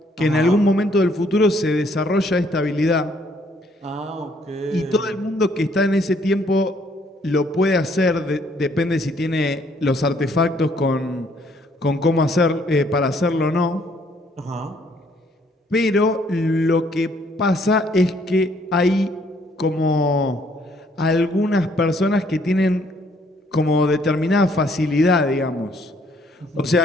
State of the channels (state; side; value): normal; both; correlation 0.66